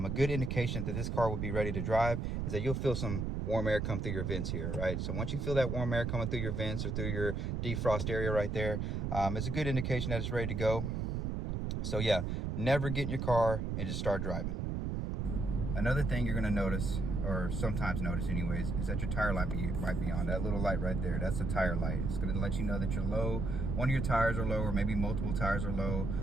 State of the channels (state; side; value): noise; right; rumble, 1 dB below the sound